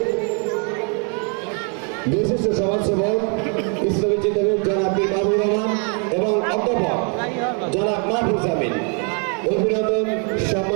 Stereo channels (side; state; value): left; quieter; 38.6 dB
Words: বিশিষ্ট সমাজসেবক ইসলামী চিন্তাবিদ জনাব পীর মাহবুবুর রহমান এবং অধ্যাপক জনাব মাহফুজ আমিন। অভিনন্দন